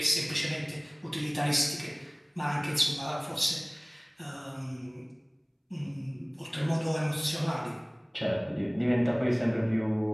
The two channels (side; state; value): both; identical; correlation 1.00